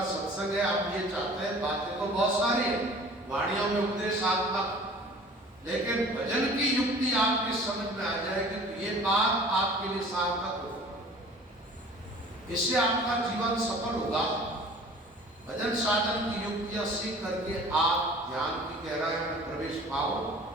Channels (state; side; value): normal; both; correlation 0.46